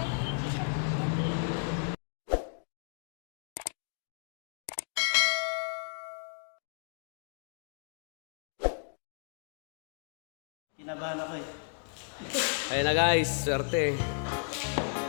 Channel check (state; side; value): silent; right; digital silence